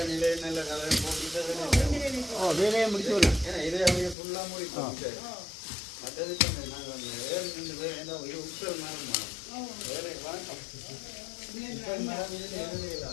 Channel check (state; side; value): drops out; right; at 4.2 s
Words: நிலை நல்ல கதை போட்டு வேலையை முடிச்சு விடலாம். ஏன்னா இதே அப்படியே ஃபுல்லாக முடிப்போம். மற்றது நாங்கள் வேறு 2 பேர் என்ன இது உட்கல் மரம் வேலை வாங்க மரம் இதில் எதுவும் இல்லை